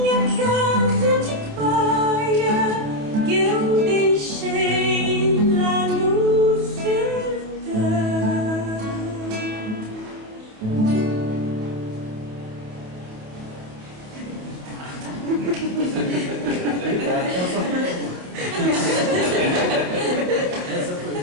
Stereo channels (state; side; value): late; left; 28 ms